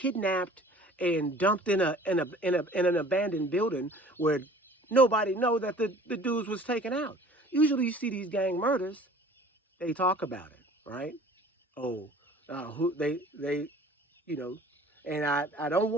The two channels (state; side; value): normal; both; correlation 0.48